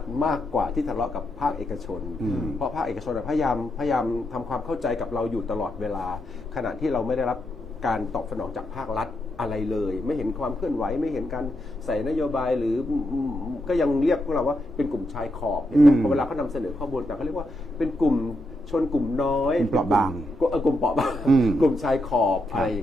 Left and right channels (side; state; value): both; normal; correlation 0.82